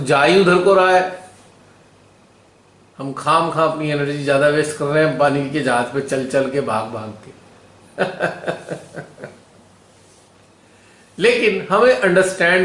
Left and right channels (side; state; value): both; identical; correlation 1.00